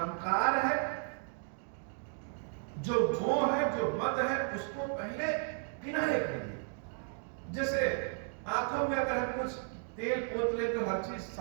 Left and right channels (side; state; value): left; silent; 55 dB below the other